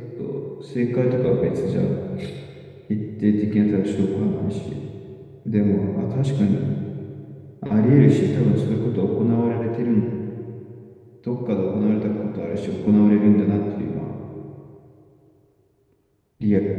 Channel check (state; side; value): identical; both; correlation 1.00